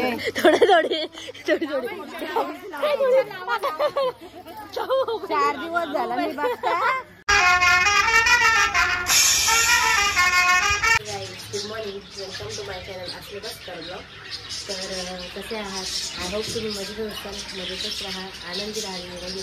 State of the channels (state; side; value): identical; both; correlation 1.00